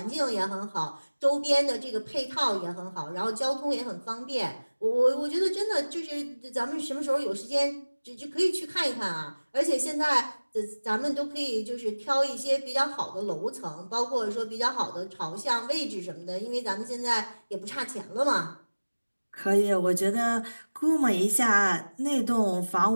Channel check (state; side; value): inverted; both; correlation -1.00